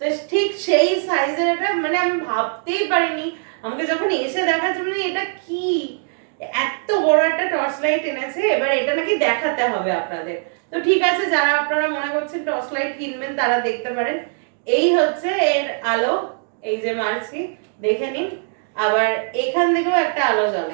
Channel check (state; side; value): silent; left; 57 dB below the other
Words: তো ঠিক সেই সাইজের এটা, মানে আমি ভাবতেই পারিনি, আমাকে যখন এসে দেখার জন্য এটা কি এত বড় একটা টর্চ লাইট এনেছে, এবার এটা নাকি দেখাতে হবে আপনাদের। তো ঠিক আছে, যারা আপনারা মনে করছেন টর্চ লাইট কিনবেন তারা দেখতে পারেন। এই হচ্ছে এর আলো, এই যে মারছি, দেখে নিন। আবার এখান থেকেও একটা আলো